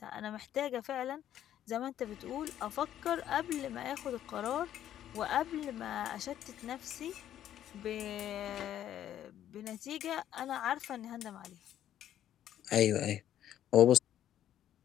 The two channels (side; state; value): right; quieter; 11.3 dB